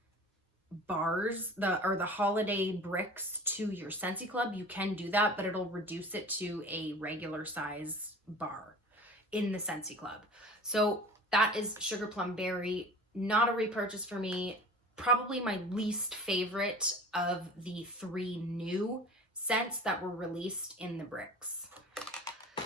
bars, the holiday bricks to your Scentsy Club, you can do that, but it'll reduce it to a regular size bar in the Scentsy Club. So that is Sugar Plum Berry. Not a repurchase for me. Probably my least favorite of the 3 new scents that were released in the bricks.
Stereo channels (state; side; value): normal; both; correlation 0.40